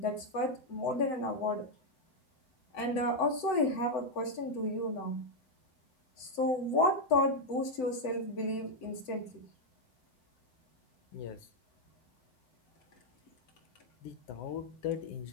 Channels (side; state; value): right; late; 7.9 ms